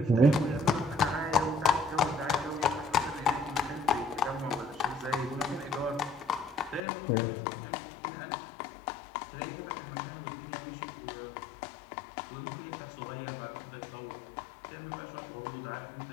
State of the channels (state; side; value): drops out; right; at 6.8 s